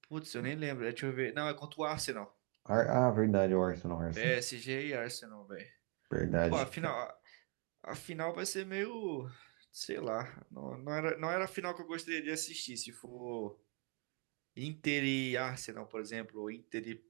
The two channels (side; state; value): left; quieter; 35.9 dB